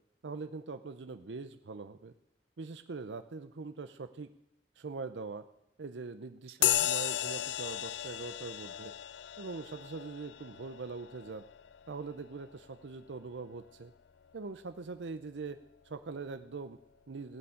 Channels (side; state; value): right; quieter; 4.5 dB